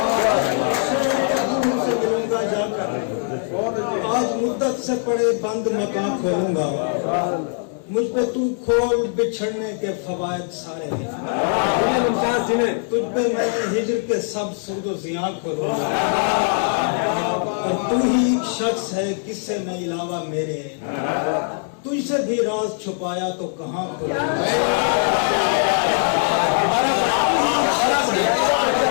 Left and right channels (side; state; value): right; silent; 59 dB below the other